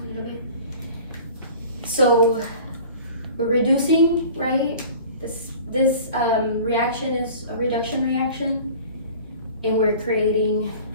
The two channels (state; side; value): inverted; both; correlation -0.43